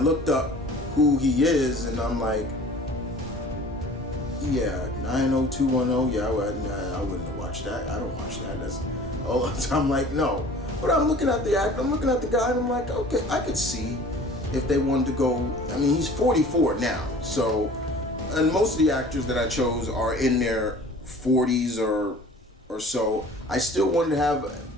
up who he is, and I'm like, yeah, 90210. Yeah, I wouldn't have watched that. I don't watch that. That's all the time. I'm like, no. But I'm looking at the actor. I'm looking at the guy, and I'm like, okay, I could see if they wanted to go. I mean, he's 44 now, so, and most of the actors that I chose are in their 40s or so. I still want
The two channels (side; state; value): both; normal; correlation 0.46